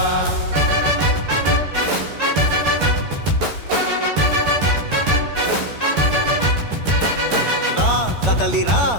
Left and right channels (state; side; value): late; left; 12 ms